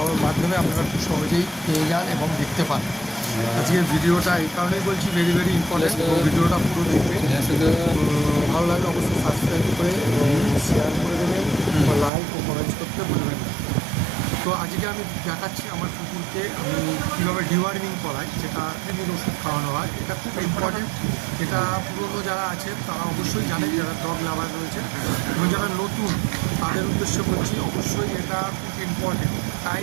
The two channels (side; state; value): left; drops out; at 12.1 s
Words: মাধ্যমে আপনারা খুব সহজেই পেয়ে যান এবং দেখতে পান। আজকের ভিডিওটা এই কারণেই বলছি ভেরি ভেরি ইম্পর্টেন্ট, ভিডিওটা পুরো দেখবেন। ভালো লাগলে অবশ্যই সাবস্ক্রাইব করে এবং শেয়ার করে দেবেন, লাইক ও কমেন্ট করতে ভুলবেন না। তো আজকে আমি দেখাচ্ছি আমার কুকুরকে আমি কীভাবে ডিওয়ার্মিং করাই, যেটা কৃমির ওষুধ খাওয়ানো হয়। এটা খুব ইম্পর্টেন্ট। এটা পুরনো যারা আছে তারা অবশ্যই জানে, যারা ডগ লাভার রয়েছে এবং যারা নতুন তাদের উদ্দেশ্যে বলছি, অবশ্যই এটা খুব ইম্পর্টেন্ট।